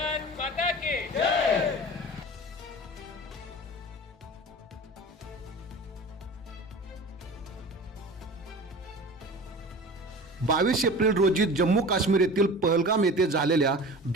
माता की जय. 22 एप्रिल रोजी जम्मू काश्मीर येथील पहलगाम येथे झालेल्या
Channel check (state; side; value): normal; both; correlation 0.37